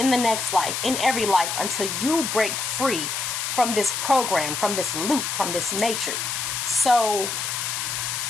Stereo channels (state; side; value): noise; left; hiss, 2 dB below the sound